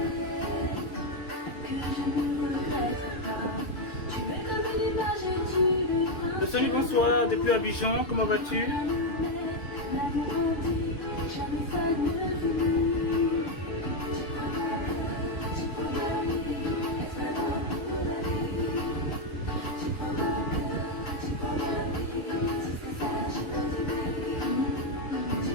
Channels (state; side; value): late; right; 6.6 ms